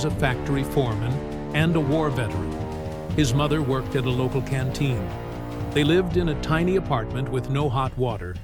a factory foreman and a war veteran. His mother worked at a local canteen. They lived in a tiny apartment with no hot water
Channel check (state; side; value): identical; both; correlation 1.00